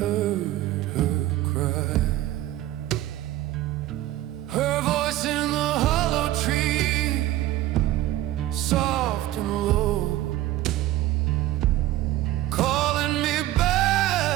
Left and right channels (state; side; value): quieter; left; 14.9 dB